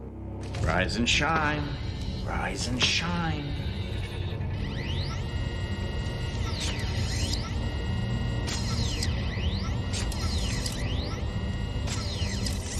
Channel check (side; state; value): both; identical; correlation 1.00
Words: Rise and shine, rise and shine.